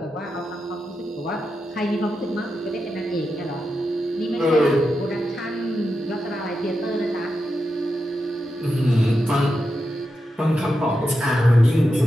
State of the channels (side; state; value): both; normal; correlation 0.88